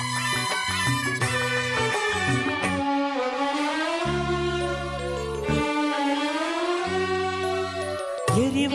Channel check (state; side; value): identical; both; correlation 1.00